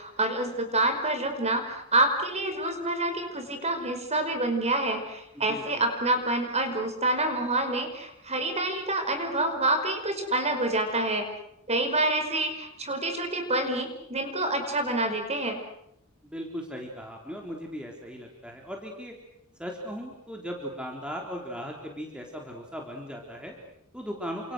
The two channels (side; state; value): both; normal; correlation -0.13